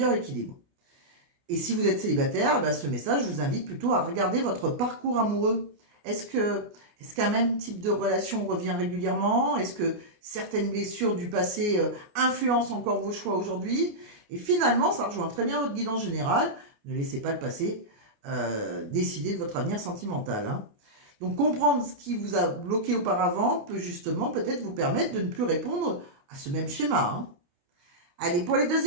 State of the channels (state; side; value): late; left; 29 ms